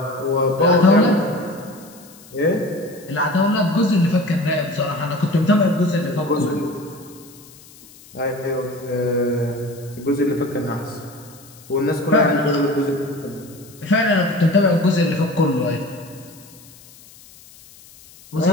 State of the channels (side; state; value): left; noise; hiss, 23 dB below the sound